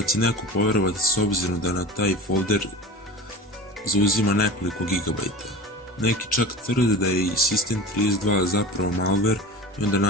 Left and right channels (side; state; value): both; normal; correlation 0.34